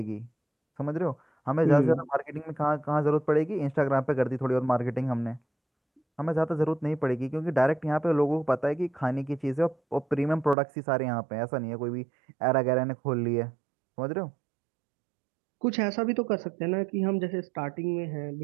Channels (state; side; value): drops out; left; at 10.6 s